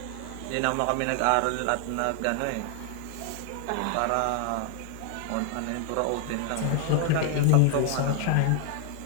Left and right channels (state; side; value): different; both; correlation 0.00